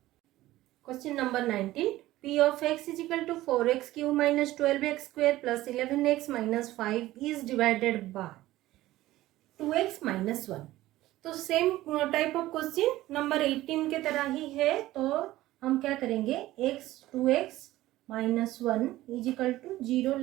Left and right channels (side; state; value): left; quieter; 16.2 dB